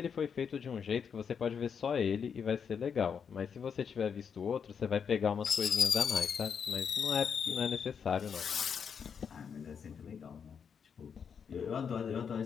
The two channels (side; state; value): right; quieter; 6.9 dB